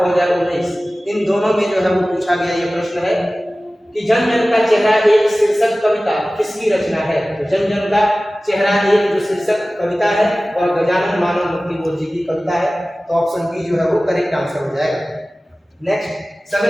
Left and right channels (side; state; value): both; normal; correlation 0.97